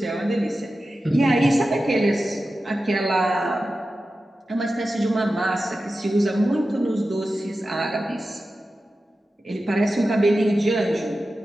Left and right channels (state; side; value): normal; both; correlation 0.93